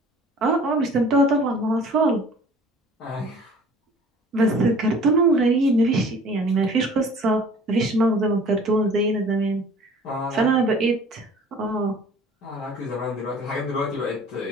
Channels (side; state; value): both; normal; correlation 0.49